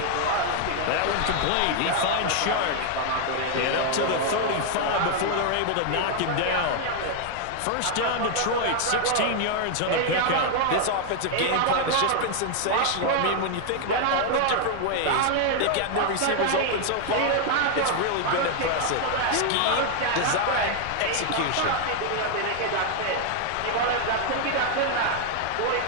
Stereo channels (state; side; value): different; both; correlation 0.00